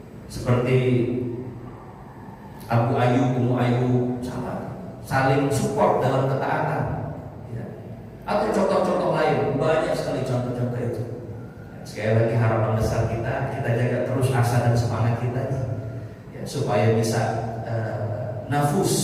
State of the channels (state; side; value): identical; both; correlation 1.00